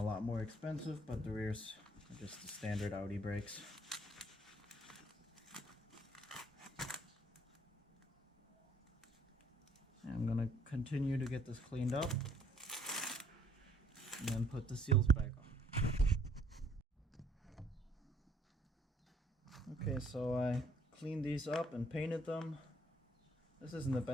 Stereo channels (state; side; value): normal; both; correlation 0.63